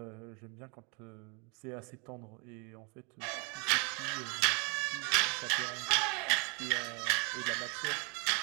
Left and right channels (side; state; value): left; quieter; 33.7 dB